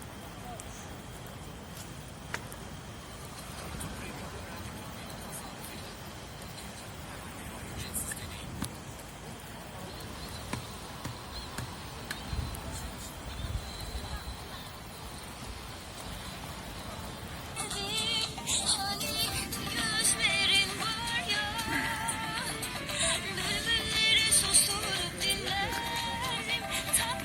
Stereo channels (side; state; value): both; identical; correlation 1.00